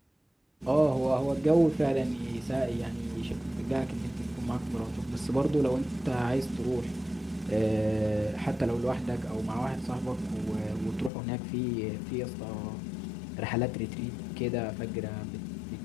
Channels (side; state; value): right; drops out; at 11.1 s